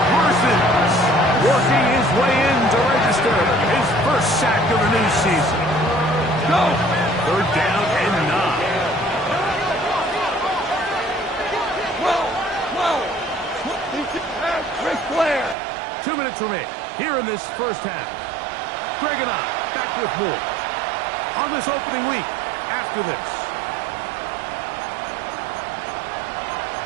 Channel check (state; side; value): drops out; left; at 15.6 s